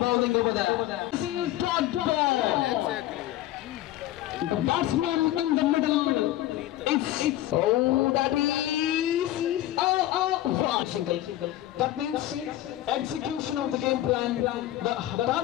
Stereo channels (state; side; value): quieter; right; 14.3 dB